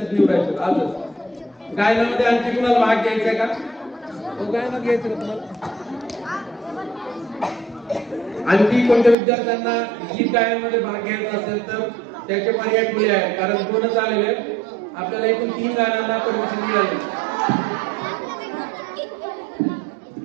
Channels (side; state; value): left; drops out; at 9.2 s